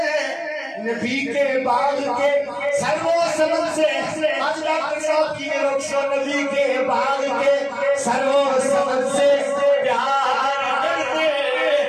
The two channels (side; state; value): both; identical; correlation 1.00